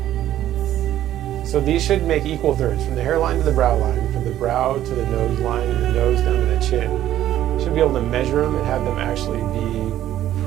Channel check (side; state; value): left; quieter; 12.4 dB